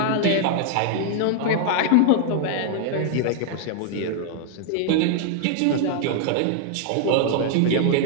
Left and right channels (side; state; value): both; different; correlation -0.01